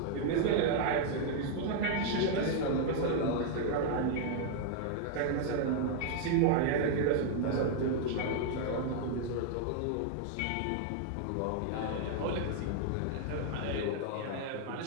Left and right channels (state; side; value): different; both; correlation 0.00